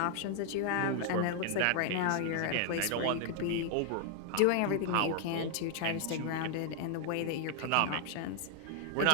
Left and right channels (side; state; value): both; different; correlation 0.00